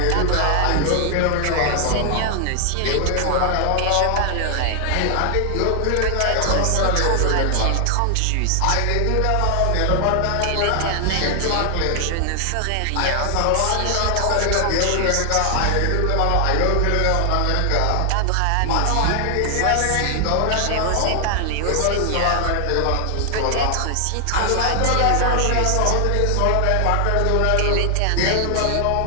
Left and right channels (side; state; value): both; different; correlation 0.00